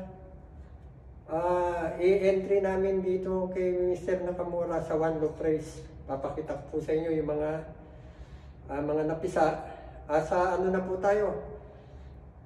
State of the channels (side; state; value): both; identical; correlation 1.00